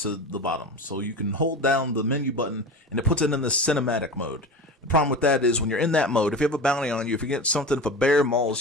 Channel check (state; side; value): normal; both; correlation 0.30